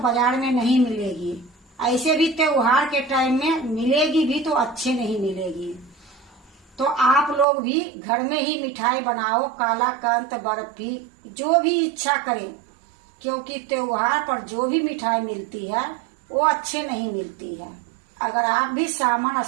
बाजार में नहीं मिलेगी, ऐसे भी त्योहार के टाइम में मिलेगी भी तो अच्छे नहीं मिलेगी। तो आप लोग भी घर में ही मिठाई बनाओ, कालाकंद, बर्फी, जो भी इच्छा करें, क्योंकि त्योहार पर जो भी मिठाई मिलती है वो अच्छे नहीं मिलती है। अगर आप भी सामान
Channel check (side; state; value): left; drops out; at 7.5 s